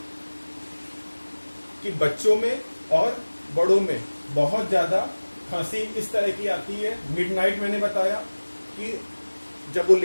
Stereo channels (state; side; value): inverted; both; correlation -1.00